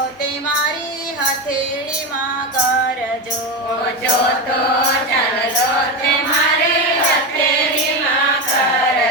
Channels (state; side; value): normal; both; correlation 0.17